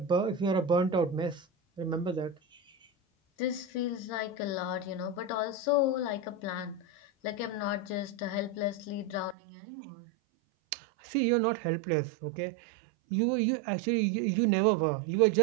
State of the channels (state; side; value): drops out; left; at 9.3 s